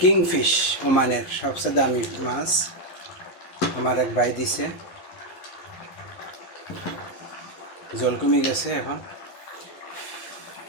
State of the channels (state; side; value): late; right; 11 ms